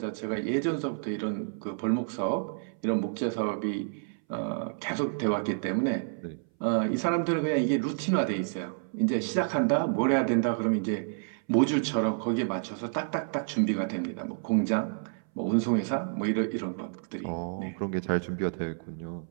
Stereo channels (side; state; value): left; silent; 58 dB below the other